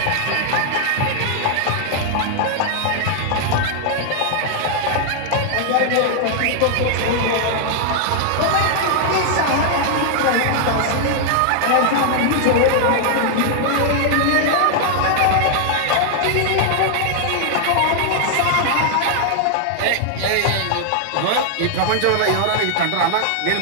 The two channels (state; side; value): different; both; correlation -0.01